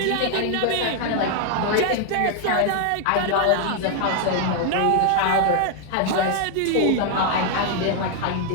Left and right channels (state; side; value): different; both; correlation 0.00